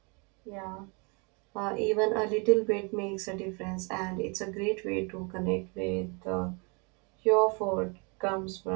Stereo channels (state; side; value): quieter; left; 32.6 dB